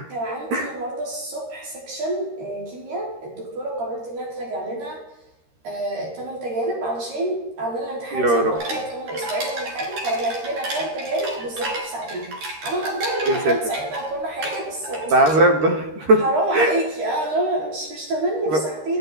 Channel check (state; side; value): late; left; 13 ms